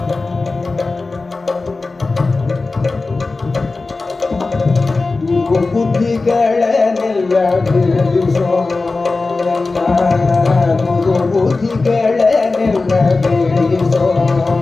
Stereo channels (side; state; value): right; quieter; 3.7 dB